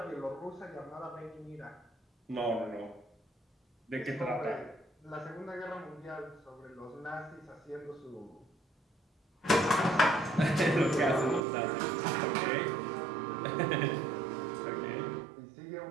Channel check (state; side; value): drops out; left; at 11.4 s